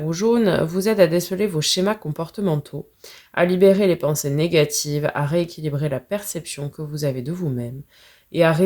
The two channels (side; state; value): both; identical; correlation 1.00